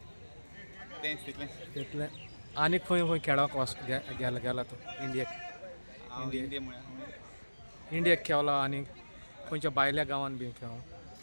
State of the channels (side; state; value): both; inverted; correlation -1.00